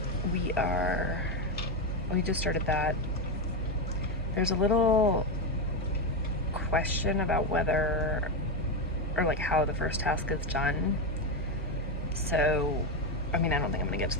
we just started that. There's a little question about whether or like how the first task is done. So, I mean, I don't think I'm gonna get to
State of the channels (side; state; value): both; normal; correlation 0.10